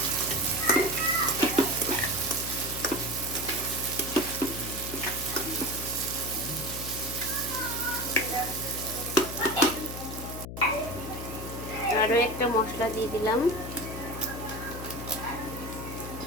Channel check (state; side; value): noise; left; hum, 8 dB below the sound